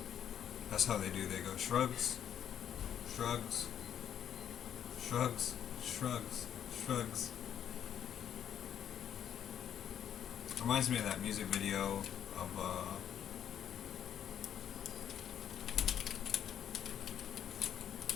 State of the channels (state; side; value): quieter; right; 9.5 dB